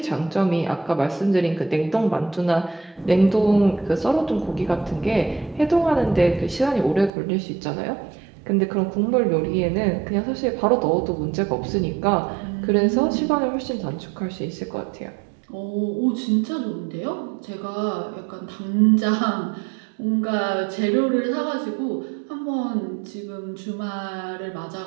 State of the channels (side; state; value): left; drops out; at 7.1 s